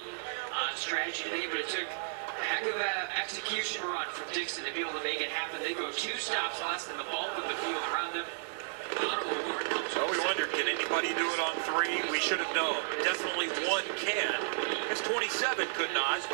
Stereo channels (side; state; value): left; silent; digital silence